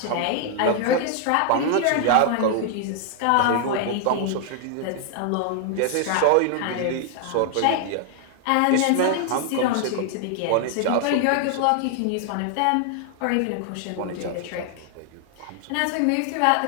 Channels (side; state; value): both; different; correlation 0.00